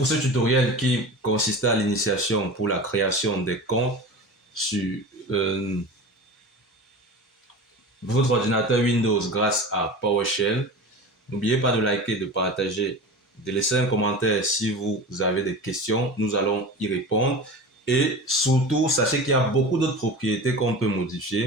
ce tutoriel qui consistait à l'initiation pour la création des comptes sur votre ordinateur Windows grâce à PowerShell. N'oubliez pas de liker, de partager, de laisser un commentaire si vous avez des questions. Nous allons y répondre. Et surtout, sachez qu'il y a beaucoup d'autres propriétés qu'on peut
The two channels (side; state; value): both; normal; correlation 0.32